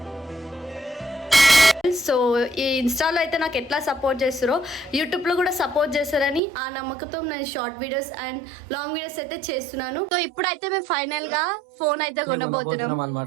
So ఈ ఇన్స్టాలో అయితే నాకు ఎట్లా సపోర్ట్ చేస్తారో యూట్యూబ్లో కూడా సపోర్ట్ చేస్తారని ఆ నమ్మకంతో నేను short videos and long videos అయితే చేస్తున్నాను. సో ఇప్పుడైతే మేము ఫైనల్ గా ఫోన్ అయితే కొనబోతున్నాం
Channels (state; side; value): drops out; left; at 6.4 s